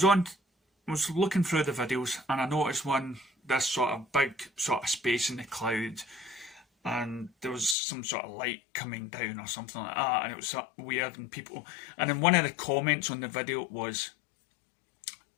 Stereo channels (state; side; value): drops out; right; at 7.8 s